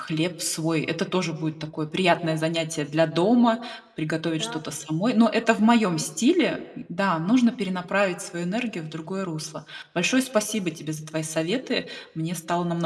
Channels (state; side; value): identical; both; correlation 1.00